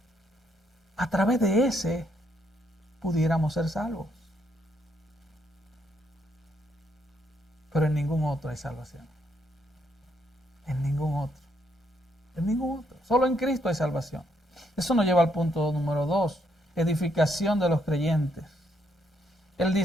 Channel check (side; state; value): both; normal; correlation 0.74